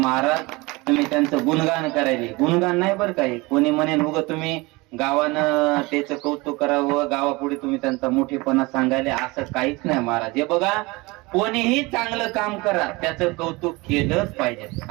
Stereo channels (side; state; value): left; quieter; 23.9 dB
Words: तुम्ही त्यांचं गुणगान करायले, गुणगान नाही बरं काय. कोणी म्हणेल उग तुम्ही गावानं त्याचं कौतुक करावं, गावापुढे तुम्ही त्यांचा मोठेपणा सांगायले, असं काहीच नाही महाराज. हे बघा, कोणीही चांगलं काम करा त्याचं कौतुक केलंच पाहिजे.